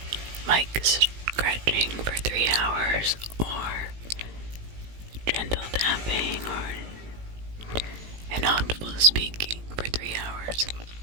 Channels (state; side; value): late; left; 18 ms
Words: mic scratching for 3 hours, or gentle tapping, or inaudible speaking for 3 hours.